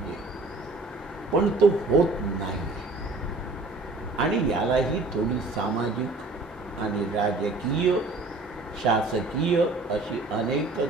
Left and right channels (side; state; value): left; quieter; 3.2 dB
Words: पण तो होत नाही. आणि यालाही थोडी सामाजिक आणि राजकीय, शासकीय अशी अनेक